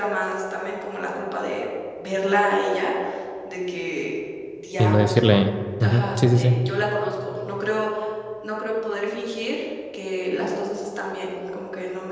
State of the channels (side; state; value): both; identical; correlation 1.00